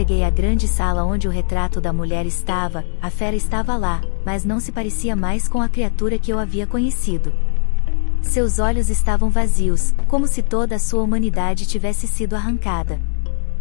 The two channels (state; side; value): silent; right; 67 dB below the other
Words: à grande sala onde o retrato da mulher estava, a fera estava lá, mas não se parecia mais com a criatura que eu havia conhecido. Seus olhos estavam vazios, como se toda a sua humanidade tivesse sido arrancada.